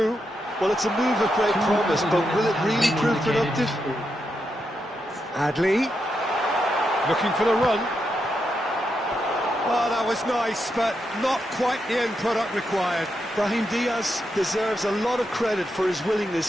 Well, it's a move of great promise, but will it really prove productive? Adli. Looking for the run. Oh, that was nice, but not quite the end product required. Brahim Diaz deserves a lot of credit for his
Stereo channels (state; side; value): normal; both; correlation 0.84